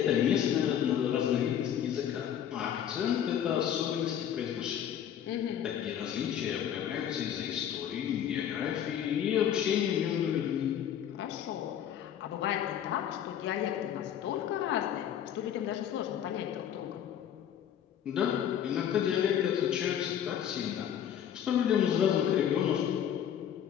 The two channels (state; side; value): quieter; right; 9.7 dB